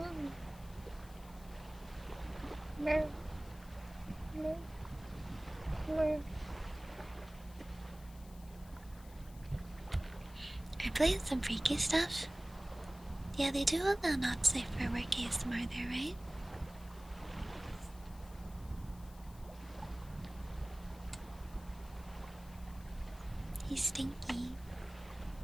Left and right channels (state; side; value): noise; left; hiss, 22 dB below the sound